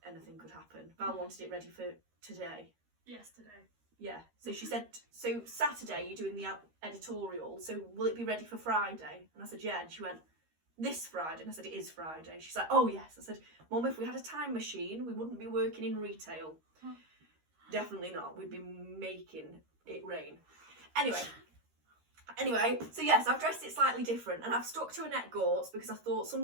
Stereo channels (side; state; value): left; late; 13 ms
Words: anything could happen. Val wanted it ready for today. Yesterday. Yeah, so she said, so Saturday you're doing the editorial, so will it be ready for Friday? And I said, yeah, and she went, this Friday? And I said, it is Friday. She's like, oh yes. I said, Mum, if we had a time machine, we wouldn't be working in retail. Definitely not. We'd be making it rain. Anyway, so yes, I've dressed it slightly different, and I've stuck to Annette Gortz because I thought